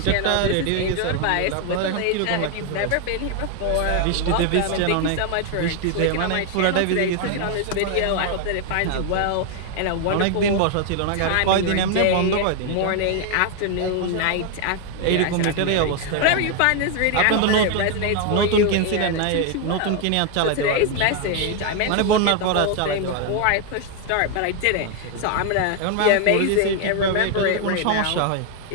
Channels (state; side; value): different; both; correlation 0.00